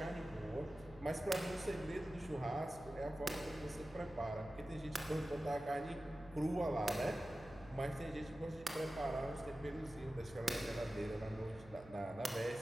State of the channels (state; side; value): noise; right; hum, 19 dB below the sound